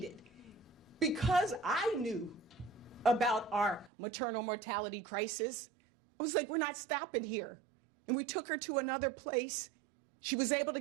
Because I knew about our maternal mortality crisis, I was like, we're not stopping here. And we took her to another place. She was able to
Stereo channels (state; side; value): drops out; left; at 3.9 s